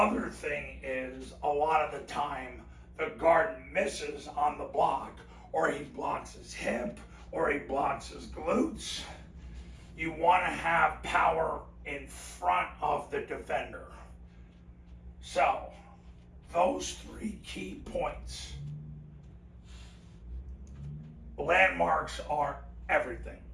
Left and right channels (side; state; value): both; identical; correlation 1.00